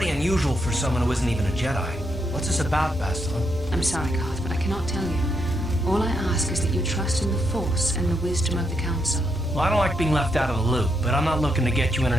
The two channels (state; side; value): normal; both; correlation 0.79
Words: unusual for someone who isn't even a Jedi. What's this about, Бастилу? I'm sorry, Garth, but I cannot tell you. All I ask is that you trust in the Force and the wisdom of the Council. Well, I don't like being left out of the loop, but I'm not looking to get you in